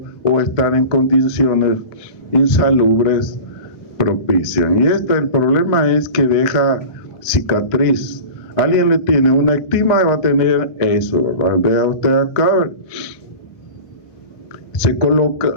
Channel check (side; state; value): right; late; 1.9 ms